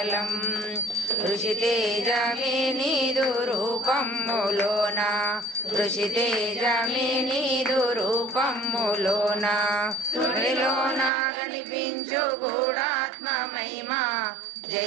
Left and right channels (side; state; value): left; drops out; at 11.1 s